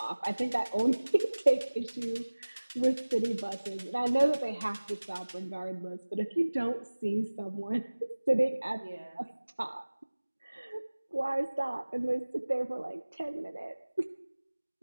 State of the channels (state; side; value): inverted; both; correlation -1.00